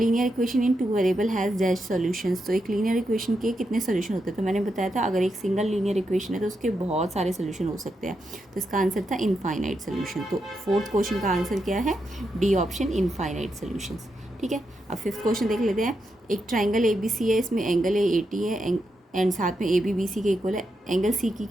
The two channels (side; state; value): both; normal; correlation 0.84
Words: equation in 2 variable has dash solutions. तो एक लीनियर इक्वेशन के कितने सोल्यूशन होते हैं। तो मैंने बताया था अगर एक सिंगल लीनियर इक्वेशन है तो उसके बहुत सारे सोल्यूशन हो सकते हैं। तो इसका आंसर था इनफाइनाइट सोल्यूशन। तो फोर्थ क्वेश्चन का आंसर क्या है, डी ऑप्शन, इनफाइनाइट सोल्यूशंस। ठीक है, अब फिफ्थ क्वेश्चन देख लेते हैं। एक ट्राइंगल ABC है, इसमें एंगल AT है एंड साथ में AB BC के इक्वल है। एंगल C की